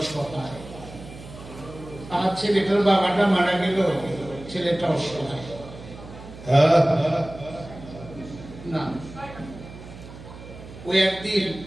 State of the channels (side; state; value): right; noise; hum, 15 dB below the sound